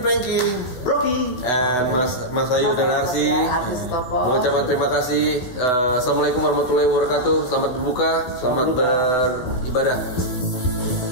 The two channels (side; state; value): right; late; 12 ms